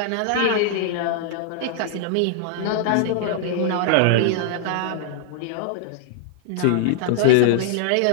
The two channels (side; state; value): both; different; correlation -0.01